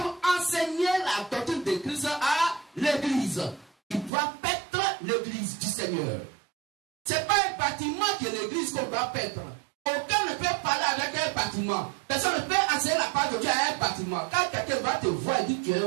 enseigner la doctrine de Christ à l'église. Ils doivent paître l'église du Seigneur. Ce n'est pas un bâtiment que l'église qu'on doit paître. Aucun ne peut parler avec un bâtiment. Personne ne peut enseigner la parole de Dieu à un bâtiment. Quand quelqu'un va te voir et dit que tu es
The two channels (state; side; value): drops out; left; at 4.1 s